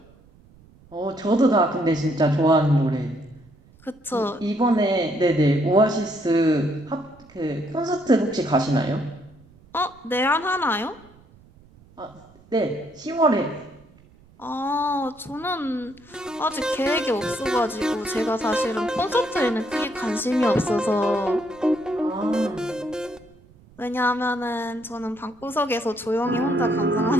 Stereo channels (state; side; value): noise; right; rumble, 26 dB below the sound